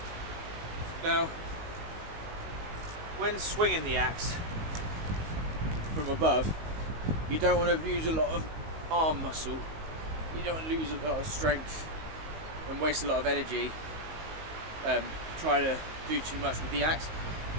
Now, when swinging the axe from above, you don't want to use a lot of arm muscle. You don't want to lose a lot of strength and waste a lot of energy trying to do too much with the axe.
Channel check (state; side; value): late; left; 19 ms